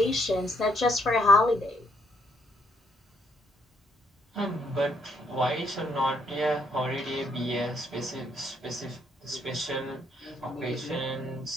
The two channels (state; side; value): normal; both; correlation 0.69